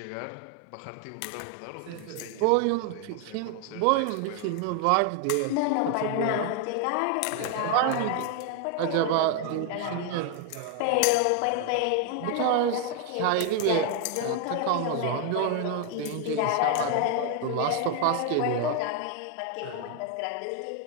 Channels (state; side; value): different; both; correlation 0.00